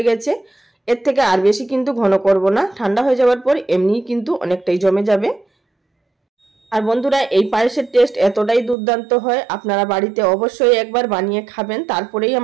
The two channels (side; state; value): left; drops out; at 8.8 s